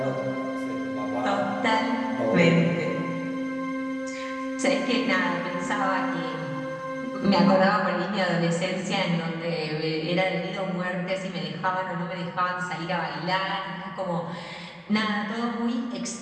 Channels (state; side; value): identical; both; correlation 1.00